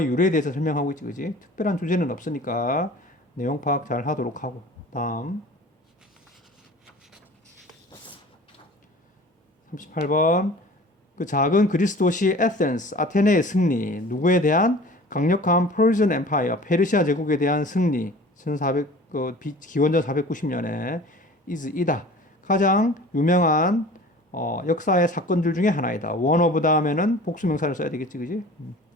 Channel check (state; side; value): normal; both; correlation 0.43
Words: 유래에 대해서 설명하고 있지, 그지? 특별한 주제는 없으니까 내용 파악 잘 하도록 하고. 다음 38번 그 작은 그리스 도시 에센스, 아테네의 승리. 누구에 대한? 강력한 퍼시안 엠파이어, 페르시아 제국에 대한 승리. 1400 기원전 490년에 이다. 가장 유명한 역사의 사건들 중에 하나이다. one of 다음에는 복수명사를 써야 되겠지, 그지?